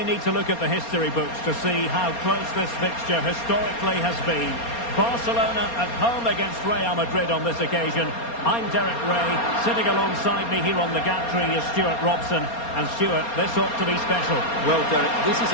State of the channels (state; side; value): late; right; 4.3 ms